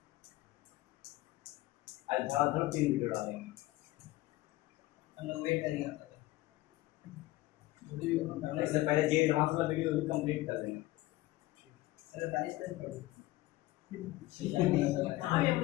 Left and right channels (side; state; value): right; quieter; 18.0 dB